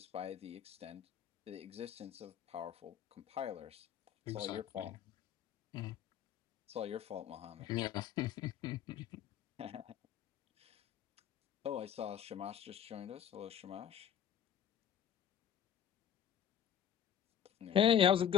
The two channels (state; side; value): quieter; right; 9.2 dB